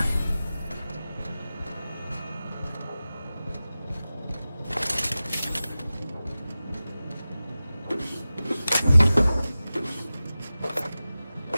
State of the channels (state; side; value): inverted; both; correlation -0.96